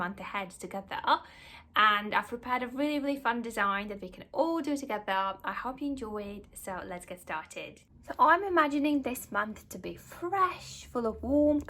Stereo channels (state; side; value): identical; both; correlation 1.00